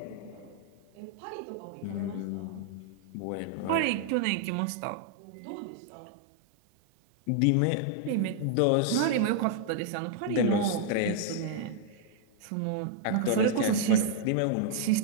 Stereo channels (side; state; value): both; different; correlation -0.01